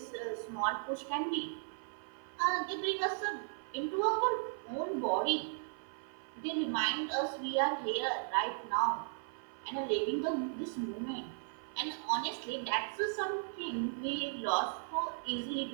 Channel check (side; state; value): left; silent; 53 dB below the other